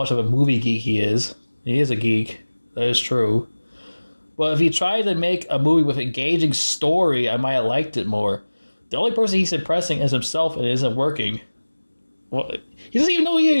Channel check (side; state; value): both; inverted; correlation -1.00